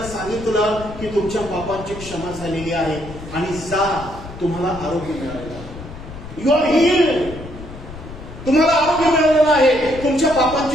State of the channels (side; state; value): left; noise; rumble, 13 dB below the sound